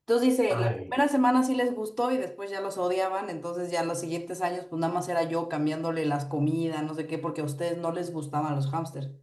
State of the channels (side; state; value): both; identical; correlation 1.00